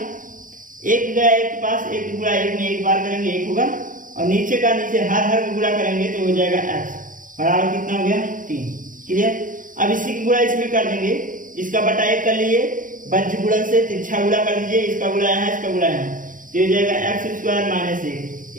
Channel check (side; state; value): left; late; 0.39 ms